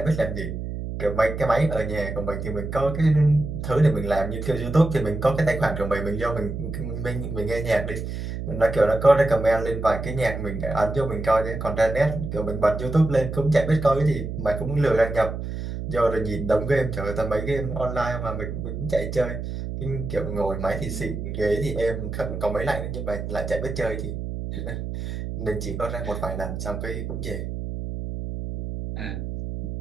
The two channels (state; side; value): noise; right; hum, 5 dB below the sound